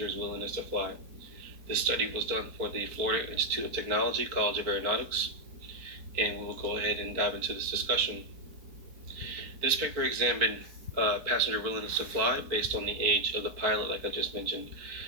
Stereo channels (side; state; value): left; late; 4.5 ms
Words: willingness to fly. This study was done for the Florida Institute of Technology, College of Aeronautics, and we will go ahead and dive into this discussion. This paper examined passenger willingness to fly based on the age of the pilot, like I just mentioned.